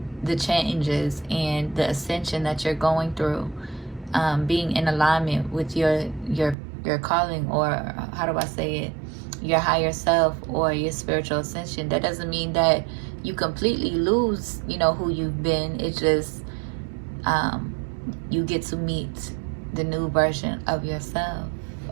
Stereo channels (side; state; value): left; drops out; at 6.6 s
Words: the changes and the ascension that you're going through, being in alignment with your calling, or how do I say it, your higher self or your spiritual ascension. That doesn't mean that you completely lose, who you've been. It's just you get to meet the new version of yourself,